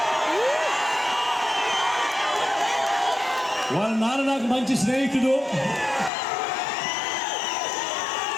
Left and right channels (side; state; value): right; drops out; at 6.1 s